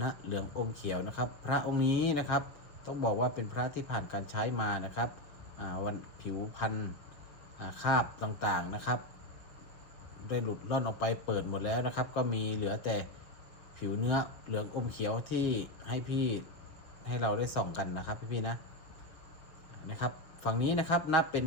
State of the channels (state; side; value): late; right; 6.5 ms